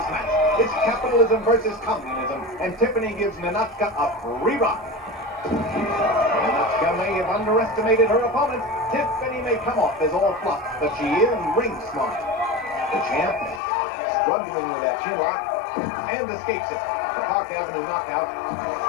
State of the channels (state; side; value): drops out; right; at 13.6 s